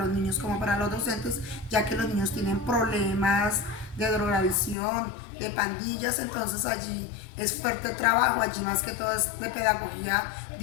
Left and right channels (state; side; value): drops out; right; at 4.8 s